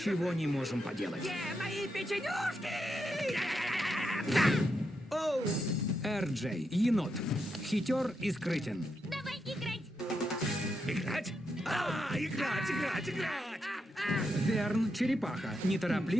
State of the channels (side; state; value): both; normal; correlation 0.83